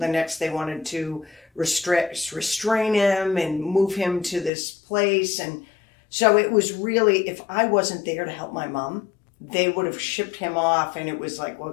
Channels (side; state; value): right; drops out; at 4.5 s